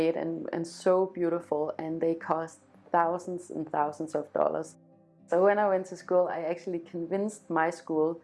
and so beautiful, and they cost thousands and thousands of dollars. So when I went to school, I actually convinced my school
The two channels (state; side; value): identical; both; correlation 1.00